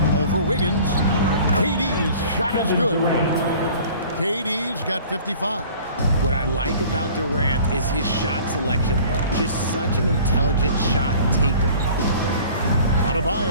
Over Wiggins. KD's shot is good. KD's got 55. What I like about Durant is his shot selection. Just such an intelligent shot taker.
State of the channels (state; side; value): inverted; both; correlation -0.47